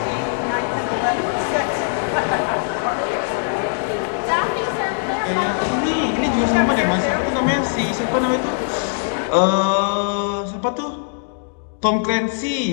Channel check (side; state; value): right; silent; digital silence